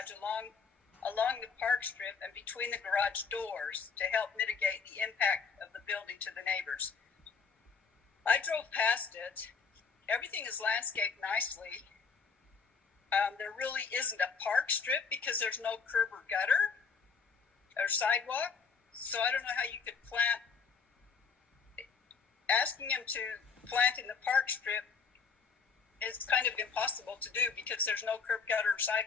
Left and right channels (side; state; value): right; quieter; 5.6 dB